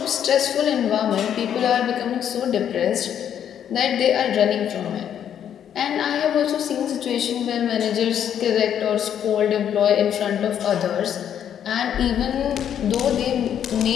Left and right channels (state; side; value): quieter; right; 9.4 dB